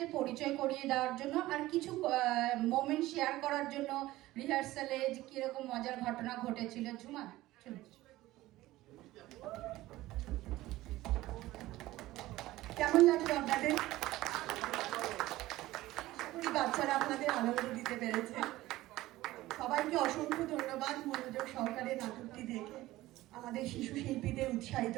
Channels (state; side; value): quieter; left; 17.0 dB